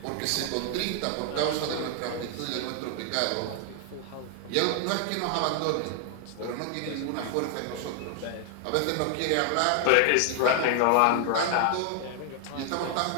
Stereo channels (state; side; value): different; both; correlation 0.00